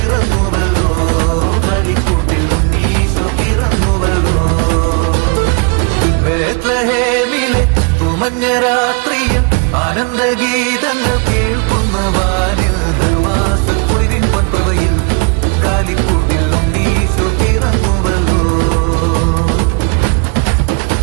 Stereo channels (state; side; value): quieter; left; 33.4 dB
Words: കാലിക്കൂട്ടിൽ ഉണ്ണീശോ പിറന്നുവല്ലോ. ബേത്ലഹേമിലെ തുമഞ്ഞ രാത്രിയിൽ ആനന്ദഗീ